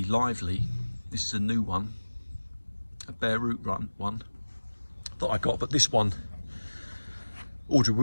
Lively. This is a new one, a bare root one that I got, but this one, Audrey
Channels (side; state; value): both; inverted; correlation -1.00